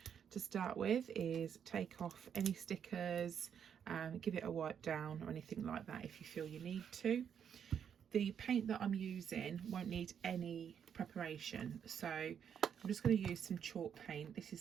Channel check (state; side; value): quieter; left; 8.1 dB